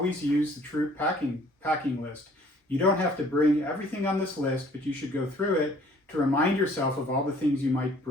use the troop packing list. You don't have to bring everything on this list, but you should go through it to remind yourself of all the things you might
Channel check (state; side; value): normal; both; correlation 0.56